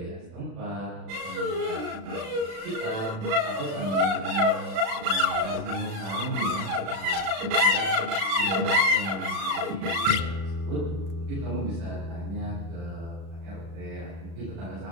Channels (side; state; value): left; late; 36 ms